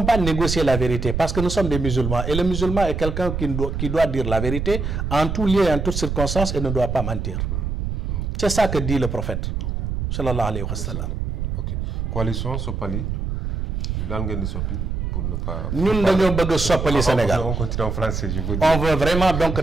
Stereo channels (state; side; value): noise; right; rumble, 2 dB below the sound